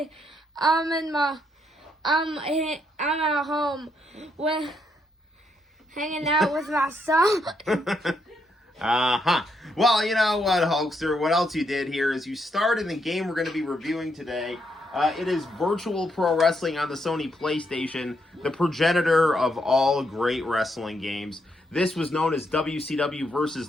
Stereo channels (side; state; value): both; normal; correlation 0.77